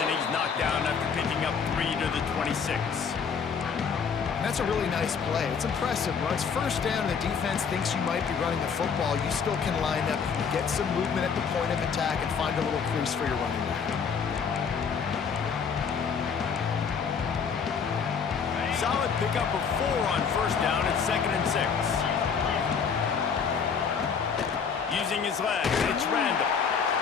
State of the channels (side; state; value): right; quieter; 6.3 dB